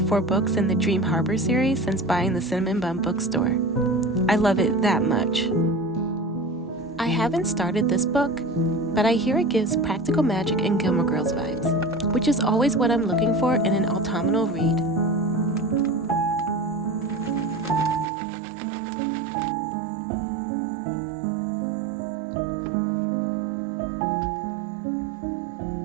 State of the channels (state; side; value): drops out; left; at 18.1 s